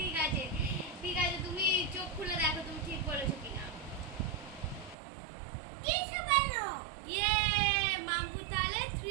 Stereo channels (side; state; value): left; drops out; at 5.0 s